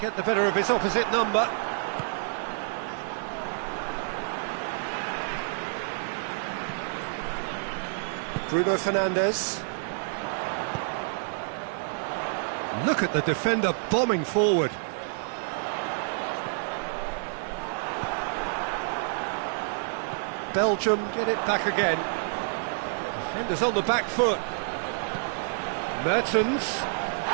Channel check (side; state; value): left; silent; digital silence